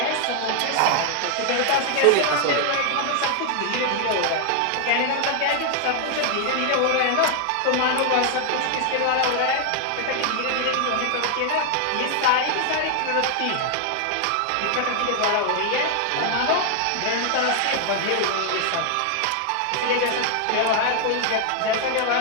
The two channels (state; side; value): different; both; correlation 0.00